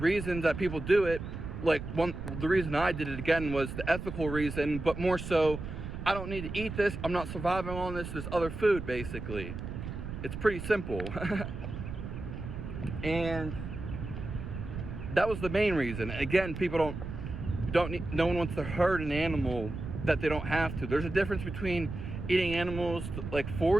that people do it, the reason I did it again was the ethical reason, but more so, I don't need to eat this, I'm not surviving on this other food, basically. It's pretty simple. And that was the main reason. Again, people no one wants to hurt an animal that they don't have to. There's a difference between eating animals like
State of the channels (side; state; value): right; noise; rumble, 7 dB below the sound